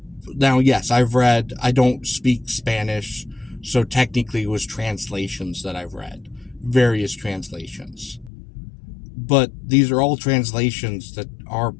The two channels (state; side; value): drops out; right; at 8.3 s